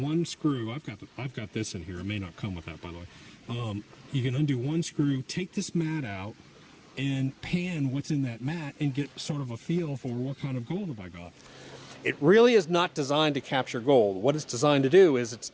screw. I've got this in here. It may not come with that, by the way. You can undo one screw, take this mat out, and pan what's in that mat and get sort of a feel for what kind of gold have I got. It really is not designed to capture gold. What it's designed to do is it's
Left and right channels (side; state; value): both; identical; correlation 1.00